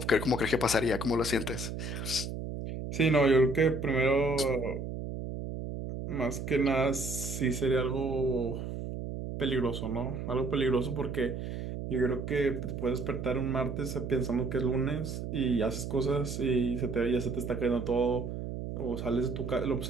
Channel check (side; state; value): right; noise; hum, 6 dB below the sound